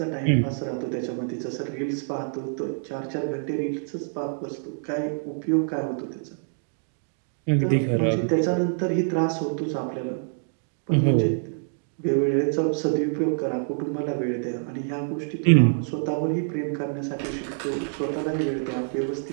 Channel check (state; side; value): silent; left; digital silence